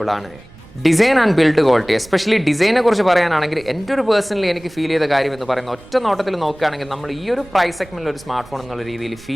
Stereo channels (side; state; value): right; noise; rumble, 22 dB below the sound